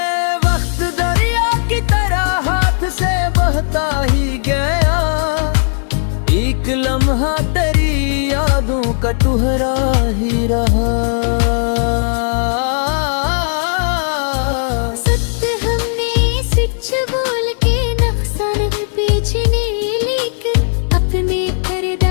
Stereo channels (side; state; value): right; silent; digital silence